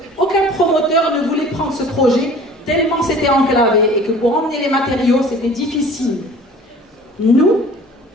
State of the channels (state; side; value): normal; both; correlation 0.46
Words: promoteur ne voulait prendre ce projet tellement c'était enclavé et que pour emmener les matériaux c'était difficile. Nous,